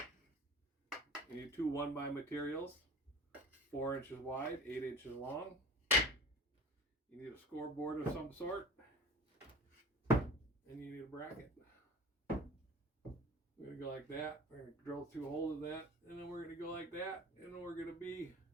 need 2 1x materials, 4 inches wide, 8 inches long. You need a scoreboard of some sort, and you need a bracket. We're going to go like that. We're going to drill 2 holes in that, and then we're going to go like that, and then we're going to be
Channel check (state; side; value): normal; both; correlation 0.39